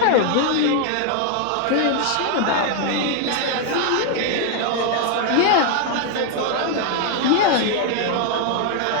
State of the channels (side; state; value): both; different; correlation 0.00